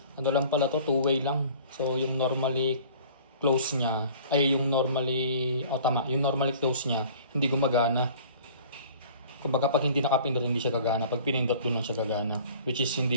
Ano lang pala to, 2-way lang. So yung normally close niya, yung normally close niya, hindi gumagana. Kumbaga pag hindi nakapindot, hindi siya gagana. Pag pinindot, dun lang siya gagana. Which is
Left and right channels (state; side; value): inverted; both; correlation -0.48